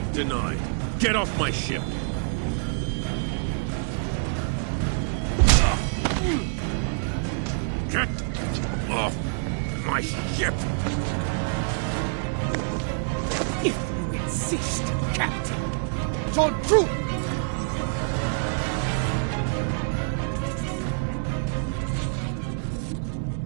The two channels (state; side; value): silent; left; 58 dB below the other